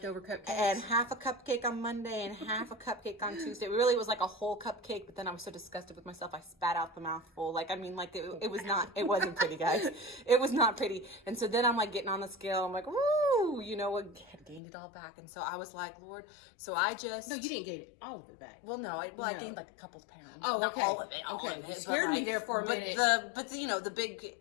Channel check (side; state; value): right; drops out; at 14.6 s